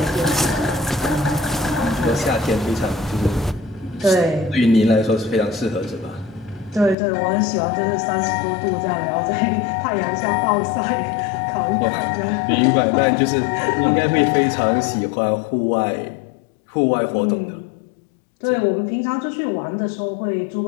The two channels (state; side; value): drops out; right; at 7.0 s